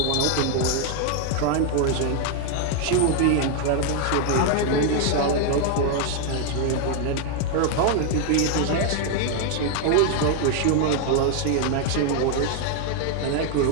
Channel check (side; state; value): both; different; correlation 0.01